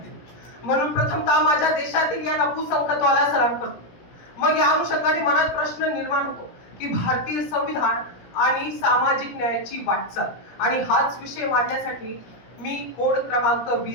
म्हणून प्रथमतः माझ्या देशातील या नपुसंकत्वाला सलाम करतो. मग या अनुषंगाने मनात प्रश्न निर्माण होतो की भारतीय संविधान आणि सामाजिक न्यायाची वाटचाल, आणि हाच विषय मांडण्यासाठी मी कोड क्रमांक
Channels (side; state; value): right; late; 17 ms